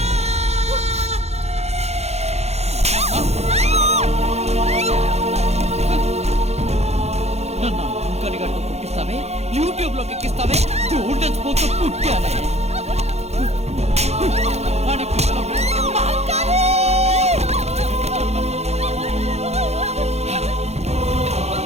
నన్ను అంకలిగట్టు పుట్టిస్తావే, యూట్యూబ్ లోకి ఎక్కిస్తావే, పుట్టానే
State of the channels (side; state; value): left; late; 0.31 ms